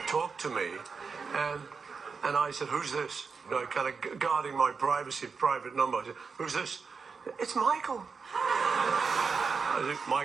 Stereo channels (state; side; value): quieter; left; 5.2 dB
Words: talked to me, and I said, "Who's this?" You know, kind of guarding my privacy, private number. I said, "Who's this?" "It's Michael." I said,